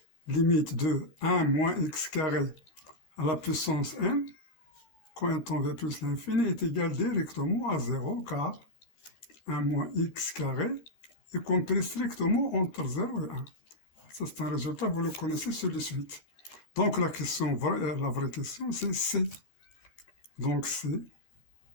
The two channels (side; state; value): right; late; 14 ms